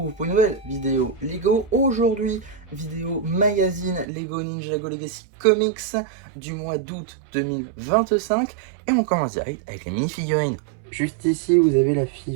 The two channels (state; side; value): drops out; left; at 4.0 s